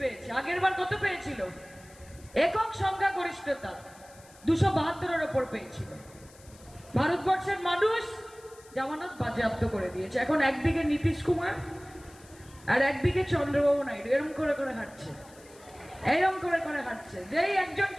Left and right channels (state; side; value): noise; left; hiss, 24 dB below the sound